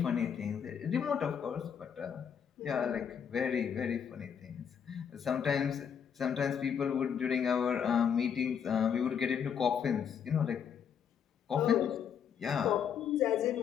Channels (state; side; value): quieter; right; 7.8 dB